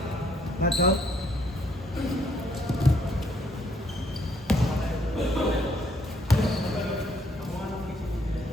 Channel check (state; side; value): normal; both; correlation 0.68